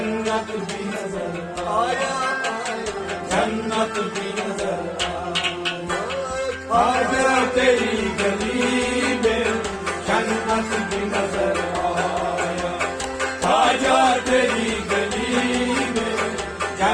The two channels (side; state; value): both; identical; correlation 1.00